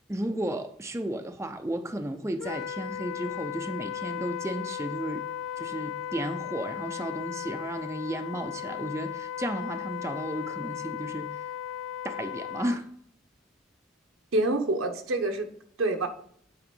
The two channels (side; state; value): both; normal; correlation 0.41